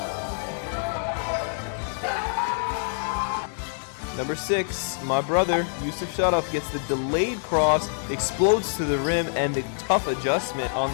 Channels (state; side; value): silent; right; digital silence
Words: Number 6, my brother, Yusuf Sharaf, gets the delayed cross, explodes to the rim, and the tough adjustment